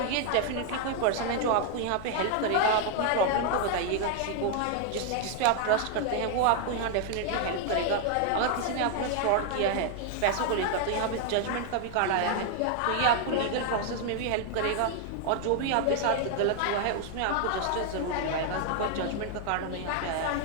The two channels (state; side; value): different; both; correlation 0.00